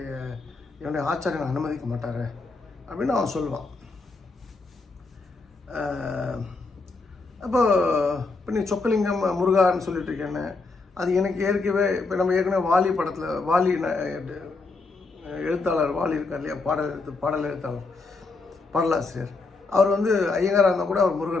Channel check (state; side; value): quieter; right; 3.8 dB